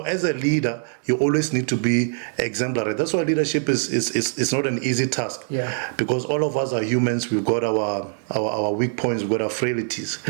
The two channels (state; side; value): silent; left; digital silence